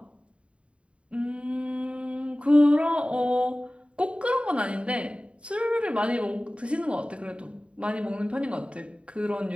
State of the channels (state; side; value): late; left; 0.060 ms